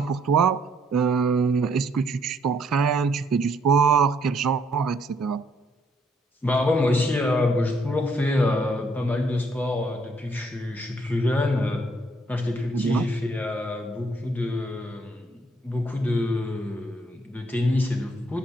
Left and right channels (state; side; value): normal; both; correlation 0.68